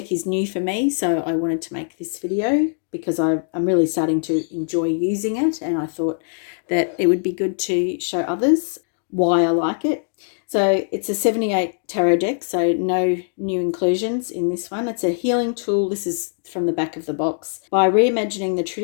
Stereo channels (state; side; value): silent; right; digital silence